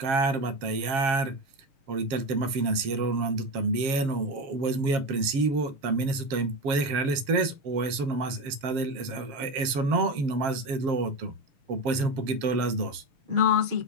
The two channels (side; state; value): left; late; 7.4 ms